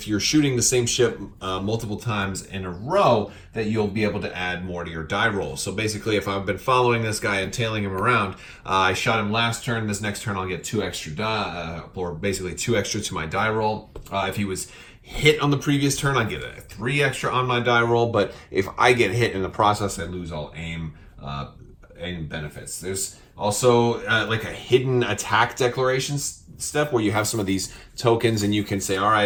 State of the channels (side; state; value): both; identical; correlation 1.00